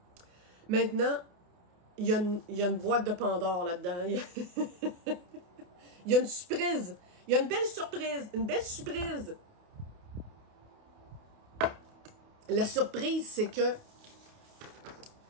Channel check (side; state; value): left; late; 28 ms